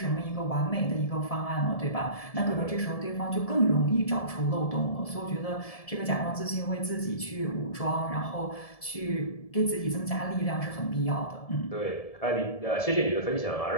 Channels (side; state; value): right; late; 1.7 ms